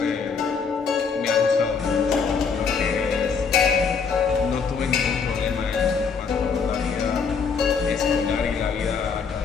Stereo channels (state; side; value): quieter; right; 5.7 dB